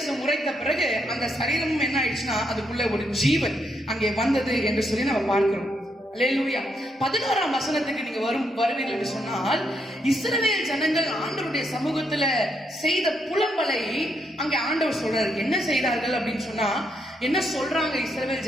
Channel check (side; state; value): both; normal; correlation 0.77